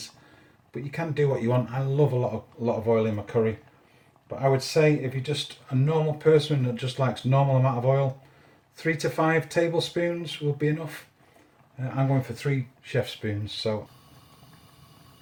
but you can do what you want. I love a lot of oil in my curry, but I would say if you're just a normal person that just likes normal amount of oil, 3 to 5 tablespoons will be enough. I'm going for 3 chef spoons. So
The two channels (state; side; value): identical; both; correlation 1.00